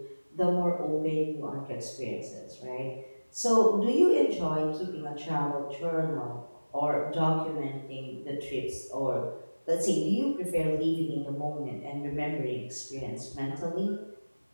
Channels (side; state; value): both; inverted; correlation -1.00